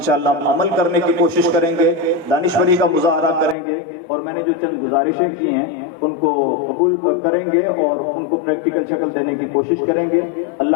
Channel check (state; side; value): drops out; right; at 3.6 s